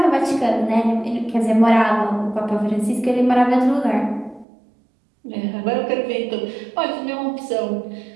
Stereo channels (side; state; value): left; drops out; at 4.5 s